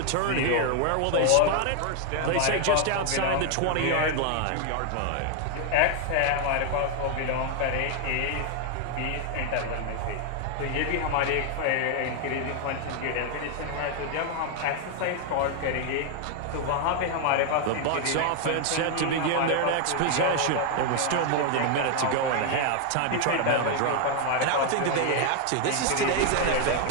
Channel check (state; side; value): different; both; correlation 0.00